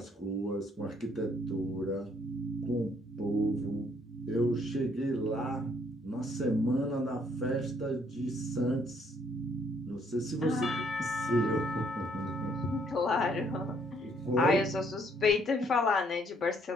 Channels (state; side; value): normal; both; correlation 0.67